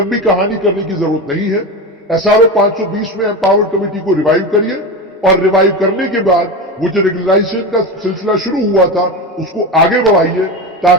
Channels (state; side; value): normal; both; correlation 0.21